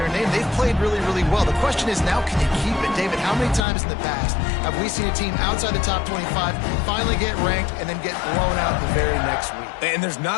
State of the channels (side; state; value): right; drops out; at 3.7 s